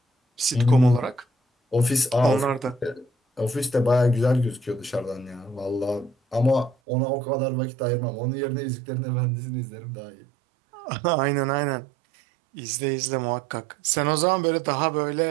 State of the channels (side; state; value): left; drops out; at 6.8 s